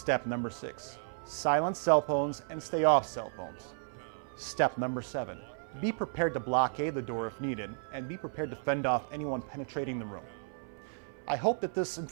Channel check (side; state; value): left; silent; 55 dB below the other